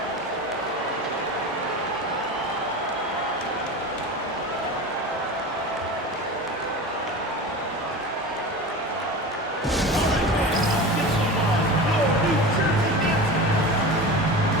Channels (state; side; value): normal; both; correlation 0.30